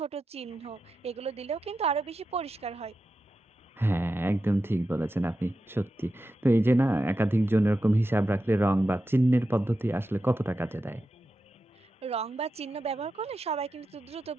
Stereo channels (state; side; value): normal; both; correlation 0.90